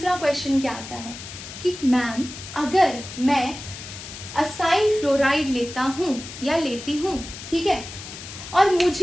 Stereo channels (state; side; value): noise; left; hiss, 12 dB below the sound